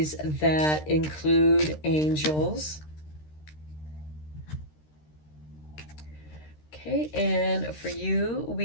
that include angels. Okay, and for you,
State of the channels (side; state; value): right; late; 13 ms